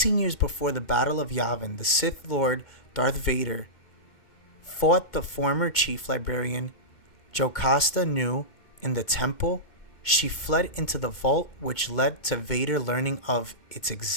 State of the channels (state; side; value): late; right; 2.2 ms